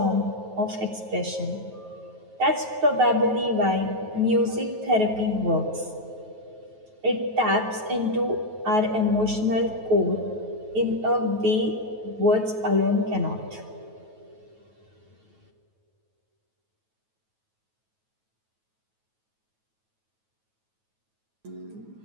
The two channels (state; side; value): late; left; 9.3 ms